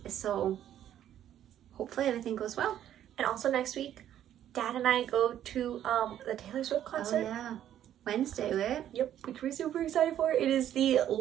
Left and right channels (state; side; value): quieter; left; 11.0 dB